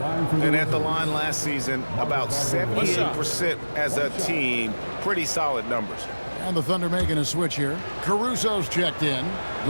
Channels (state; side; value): inverted; both; correlation -1.00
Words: at the line last season, about 78% as a team. Pretty solid numbers. And the Thunder making a switch here. Caruso's checked in.